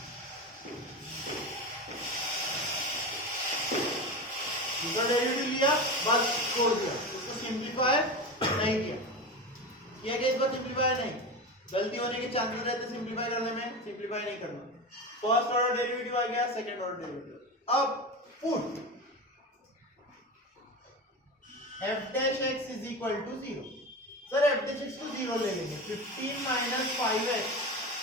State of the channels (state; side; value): normal; both; correlation 0.24